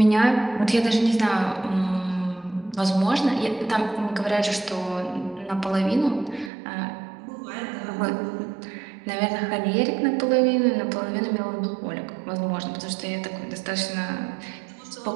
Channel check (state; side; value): drops out; left; at 6.5 s